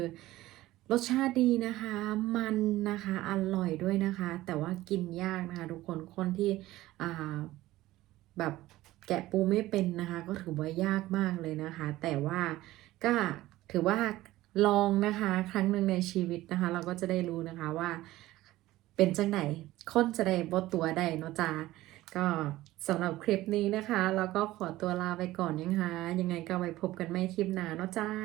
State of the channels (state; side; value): quieter; left; 16.6 dB